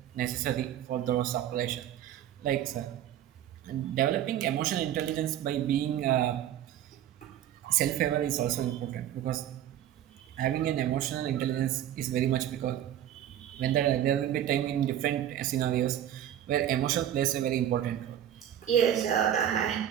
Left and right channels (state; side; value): quieter; left; 11.1 dB